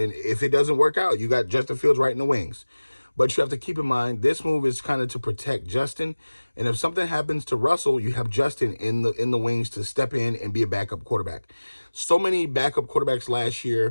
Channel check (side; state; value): both; inverted; correlation -1.00